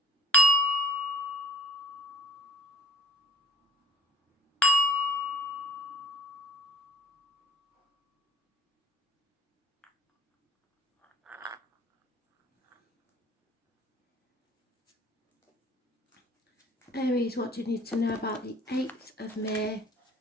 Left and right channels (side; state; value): both; normal; correlation 0.51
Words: Aries, what do you need to know about the 8th of May